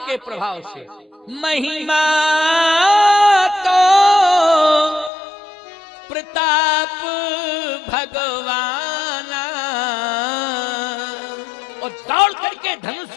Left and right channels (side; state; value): right; drops out; at 5.1 s